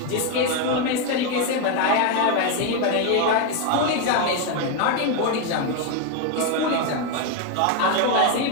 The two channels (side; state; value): both; different; correlation 0.02